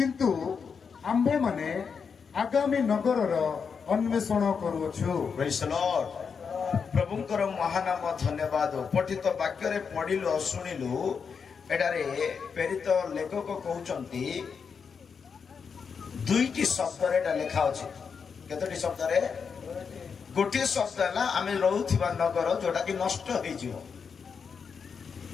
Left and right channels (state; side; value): quieter; right; 6.1 dB